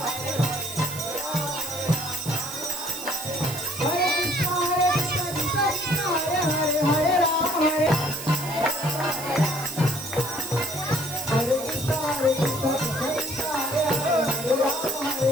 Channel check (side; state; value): right; noise; hiss, 10 dB below the sound